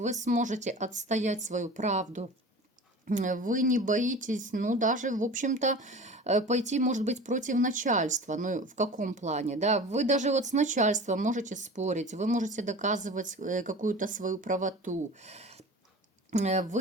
сможете отстоять свою правду, вы не боитесь, ну, даже, в общем-то, пойти, может быть, против начальства, ну, в каком плане, да, вы даже вот с начальством можете спорить, вы можете доказывать какую-то свою правоту.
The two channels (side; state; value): both; normal; correlation 0.37